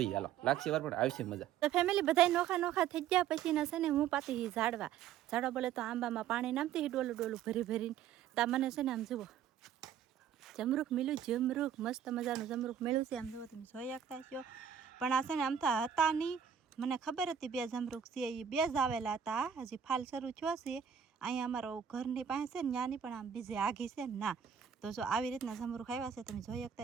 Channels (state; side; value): quieter; left; 8.6 dB